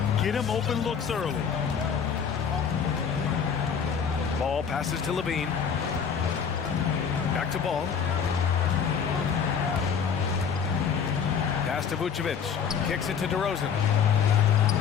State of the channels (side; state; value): right; quieter; 7.0 dB